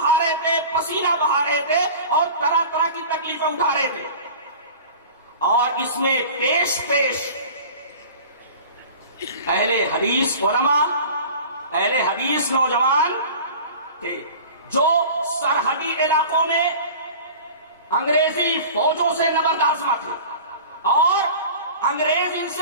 رہے تھے، پسینہ بہا رہے تھے، اور طرح طرح کی تکلیفیں اٹھا رہے تھے۔ اور اس میں پیش اہل حدیث علماء، اہل حدیث نوجوان تھے جو سرحدی علاقوں میں انگریزی فوجوں سے نبردآزما تھے، اور انگریز ان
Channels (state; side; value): inverted; both; correlation -0.39